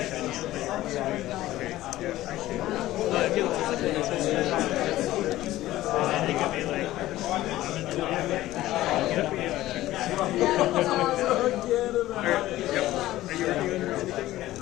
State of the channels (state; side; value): quieter; right; 15.6 dB